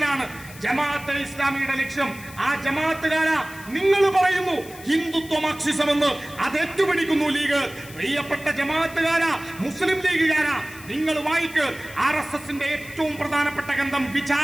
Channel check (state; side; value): noise; left; hiss, 18 dB below the sound